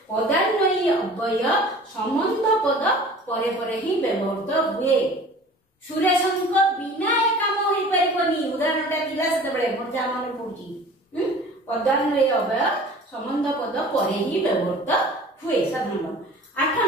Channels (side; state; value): both; normal; correlation 0.44